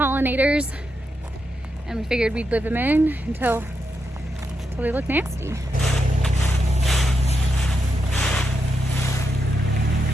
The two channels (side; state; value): both; normal; correlation 0.84